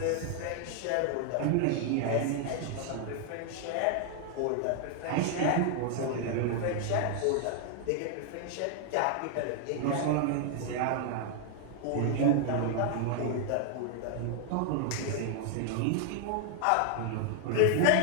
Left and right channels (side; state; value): both; different; correlation 0.00